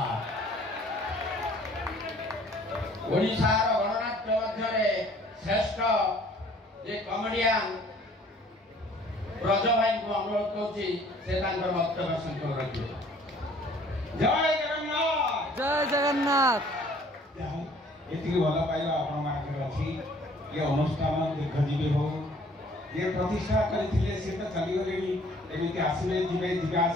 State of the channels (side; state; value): both; normal; correlation 0.56